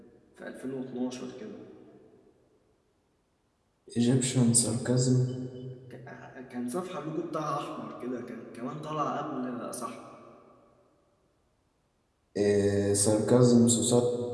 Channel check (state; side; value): identical; both; correlation 1.00